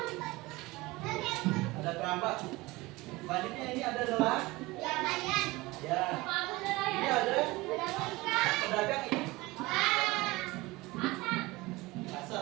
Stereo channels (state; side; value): quieter; left; 21.3 dB